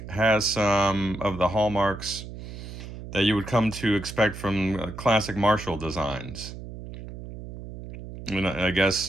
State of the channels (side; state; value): right; noise; hum, 11 dB below the sound